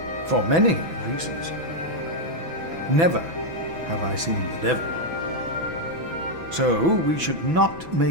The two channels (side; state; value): left; late; 6.0 ms